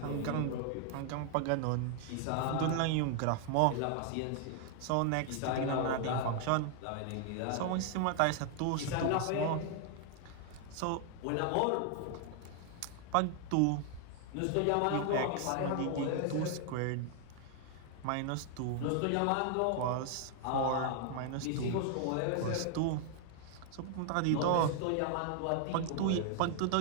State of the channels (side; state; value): both; different; correlation 0.00